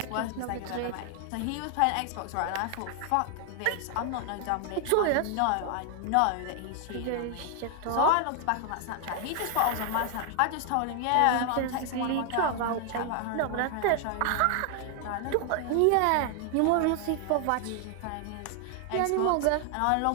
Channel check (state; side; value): different; both; correlation 0.00